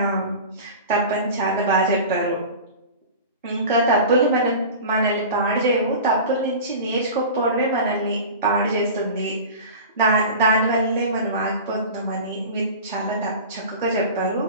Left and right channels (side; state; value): both; inverted; correlation -0.35